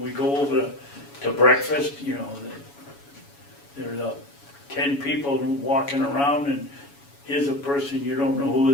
we go over to breakfast? You know, there's 10 people walking around and here's a person you don't know who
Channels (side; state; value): right; late; 7.1 ms